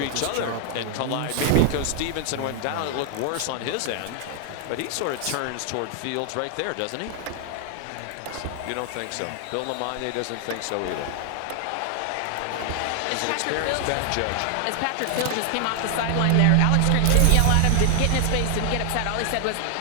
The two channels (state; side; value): different; both; correlation 0.00